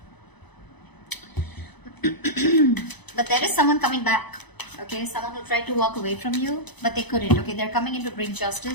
But there is someone coming back, okay? Someone who tried to walk away from you, but they couldn't, okay? They're coming in to bring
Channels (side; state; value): right; late; 0.99 ms